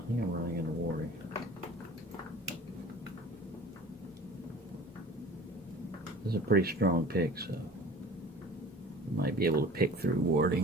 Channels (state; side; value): normal; both; correlation 0.43